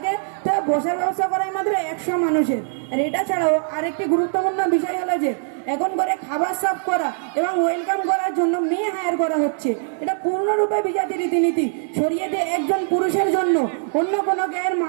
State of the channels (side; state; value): left; silent; digital silence